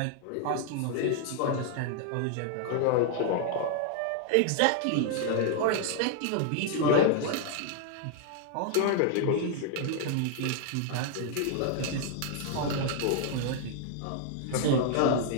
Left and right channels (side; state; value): both; different; correlation 0.00